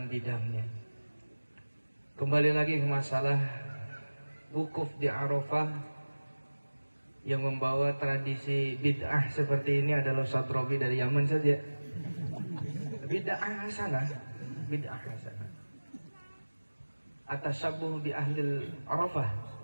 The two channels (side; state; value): both; inverted; correlation -1.00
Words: bidangnya. Kembali lagi ke masalah wukuf di Arafah, yang membawa tradisi bid'ah seperti ini adalah Ustadz Robi dari Yaman saja. Bid'ah hasanah, bid'ah hasanah. At-tashabbuh bi ahlil Arafah.